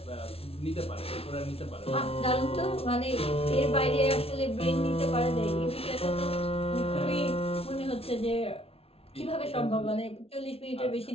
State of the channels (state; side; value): late; right; 0.28 ms